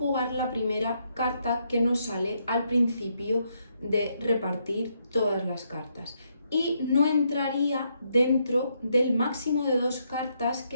la primera carta que nos sale al principio de repartir todas las cartas y no entraría dentro del máximo de 2 cartas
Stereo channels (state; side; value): inverted; both; correlation -0.77